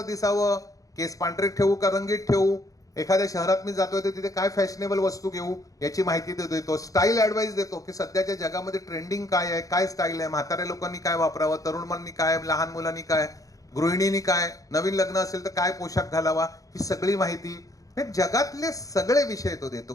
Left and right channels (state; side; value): late; right; 0.17 ms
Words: दिसावं, केस पांढरे ठेवू का रंगीत ठेवू, एखाद्या शहरात मी जातोय तर तिथे काय फॅशनेबल वस्तू घेऊ याची माहिती देतो. स्टाईल ऍडवाइस देतो की सध्याच्या जगामध्ये ट्रेंडिंग काय आहे, काय स्टाईल आहे, म्हाताऱ्या लोकांनी काय वापरावं, तरुणांनी काय, लहान मुलांनी काय, गृहिणींनी काय, नवीन लग्न असेल तर काय पोशाख घालावा, ही सगळी माहिती हे जगातले सगळे विषय तो देतो.